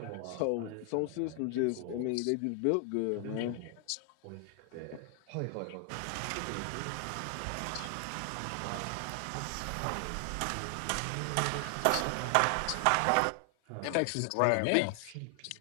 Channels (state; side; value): different; both; correlation 0.00